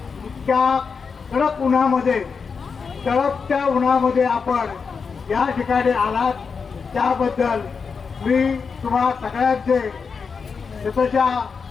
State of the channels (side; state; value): right; quieter; 5.5 dB